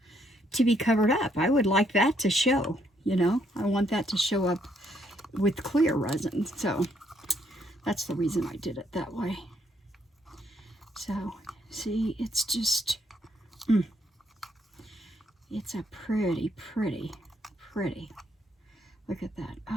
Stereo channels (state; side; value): normal; both; correlation 0.71